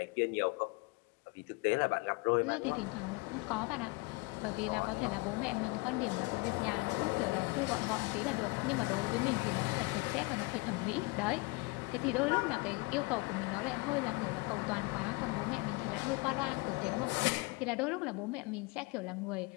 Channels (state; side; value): quieter; right; 25.5 dB